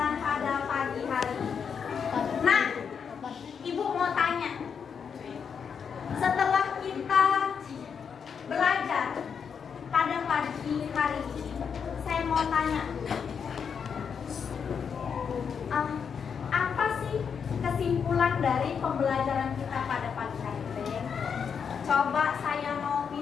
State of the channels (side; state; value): right; quieter; 6.7 dB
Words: pada pagi hari ini. Nah, Ibu mau tanya, setelah kita belajar pada pagi hari ini, saya mau tanya, apa sih kesimpulan dari pembelajaran kita pada pagi hari ini? Coba saya mau